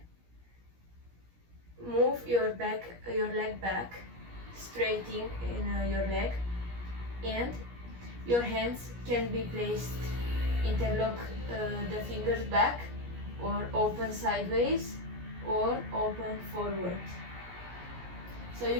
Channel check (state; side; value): late; left; 17 ms